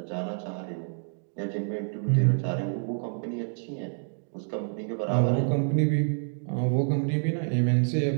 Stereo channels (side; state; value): left; silent; digital silence